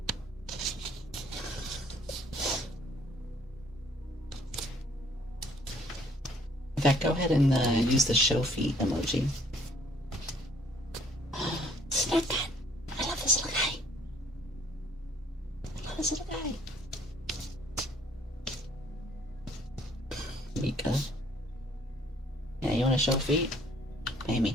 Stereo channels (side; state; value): both; normal; correlation 0.60